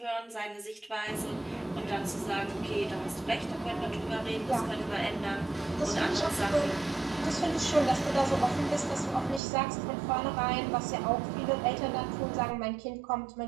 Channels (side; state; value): left; drops out; at 9.4 s